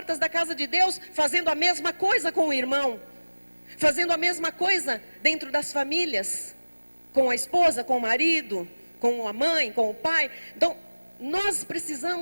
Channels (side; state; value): both; inverted; correlation -1.00